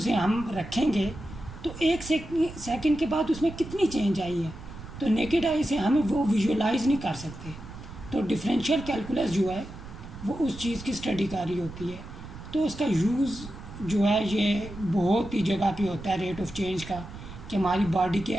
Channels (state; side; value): noise; right; rumble, 13 dB below the sound